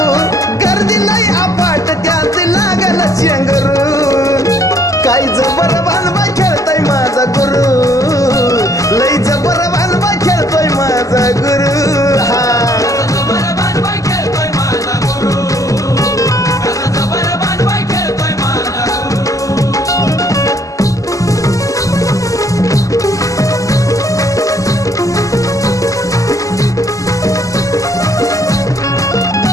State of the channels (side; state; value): right; late; 0.16 ms